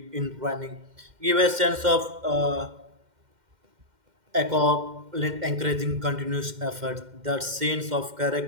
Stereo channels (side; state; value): left; late; 2.1 ms